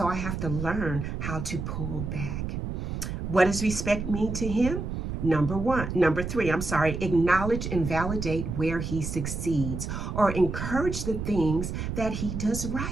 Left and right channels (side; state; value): right; noise; rumble, 4 dB below the sound